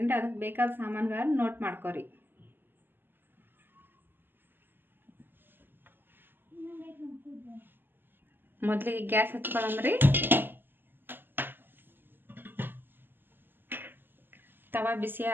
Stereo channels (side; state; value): left; late; 0.095 ms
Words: ಅದಕ್ಕೆ ಬೇಕಾದ ಸಾಮಾನುಗಳನ್ನು ನೋಟ್ ಮಾಡ್ಕೊರಿ. ಮೊದಲಿಗೆ ಗ್ಯಾಸ್ ಹಚ್ಕೊಳ್ಳೋಮ್ರಿ. ತವಾ ಬಿಸಿ